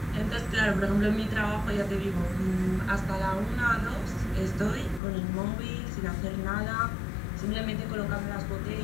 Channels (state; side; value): drops out; right; at 5.0 s